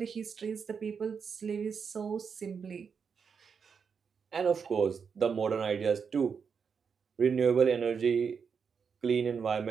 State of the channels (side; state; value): left; quieter; 6.2 dB